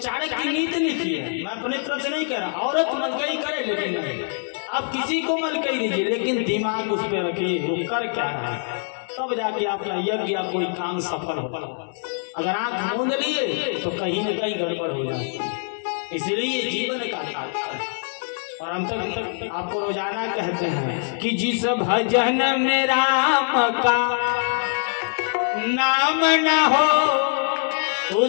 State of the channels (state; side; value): silent; right; 56 dB below the other